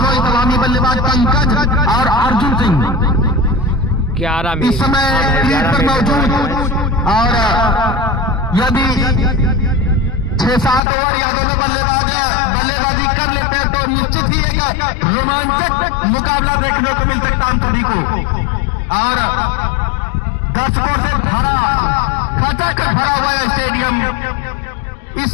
ही सलामी बल्लेबाज पंकज और अर्जुन सिंह 11 में इस समय लीड पर मौजूद और यदि 6-7 ओवर या दोनों बल्लेबाजी कर लेते हैं तो निश्चित ही एक रोमांचक मुकाबला देखने को मिल सकता हम सभी को। और दर्शकों से भरा खचाखच भरा हुआ है स्टेडियम। इस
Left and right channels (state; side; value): drops out; right; at 10.8 s